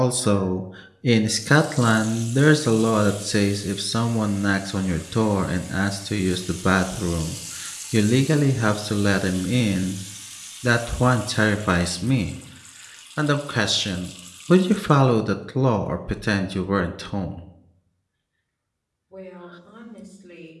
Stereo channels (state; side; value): identical; both; correlation 1.00